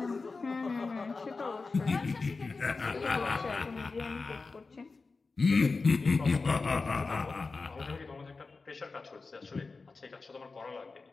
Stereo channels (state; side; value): quieter; right; 4.1 dB